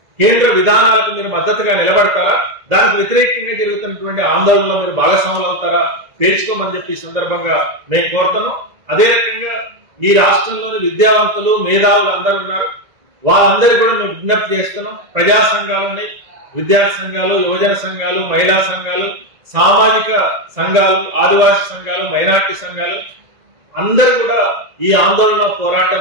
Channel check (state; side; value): late; left; 1.9 ms